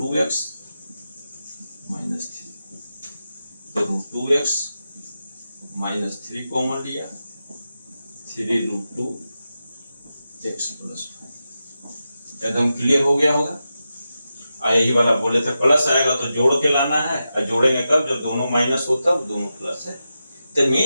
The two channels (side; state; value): both; inverted; correlation -0.90